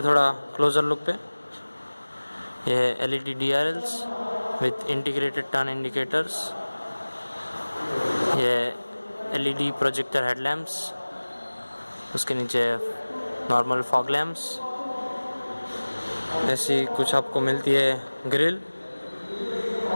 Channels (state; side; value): inverted; both; correlation -1.00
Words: थोड़ा क्लोज़र लुक पे। ये है LED DRLs with integrated turn indicators. ये LED प्रोजेक्टर हेडलैम्प्स, उसके नीचे नॉर्मल फॉग लैम्प्स। ऐसी कुछ आपको मिलती है ग्रिल।